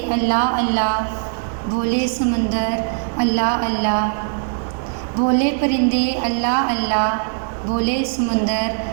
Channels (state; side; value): silent; left; digital silence